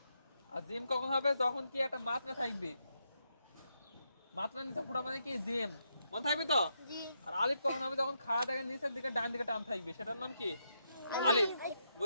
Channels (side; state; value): both; inverted; correlation -0.81